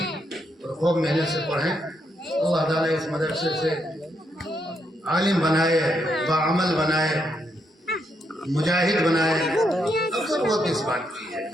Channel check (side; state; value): both; normal; correlation 0.78